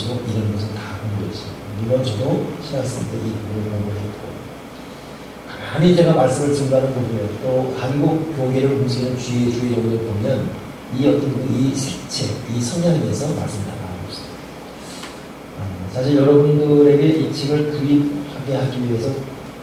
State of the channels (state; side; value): identical; both; correlation 1.00